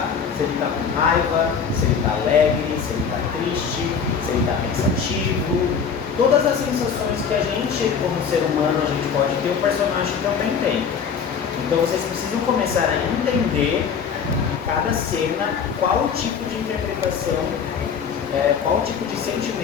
Se ele está com raiva, se ele está alegre, se ele está triste, se ele está pensativo. Todas as sensações que a gente, como ser humano, a gente pode ter, o personagem também tem. Então vocês precisam começar a entender em cada cena qual o tipo de interpretação, qual o tipo de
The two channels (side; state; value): right; quieter; 6.6 dB